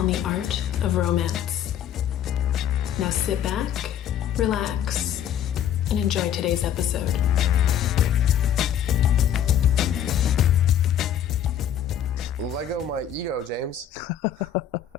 the art of romance. Now sit back, relax, and enjoy today's episode. Lego my ego, James.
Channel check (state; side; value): quieter; right; 9.6 dB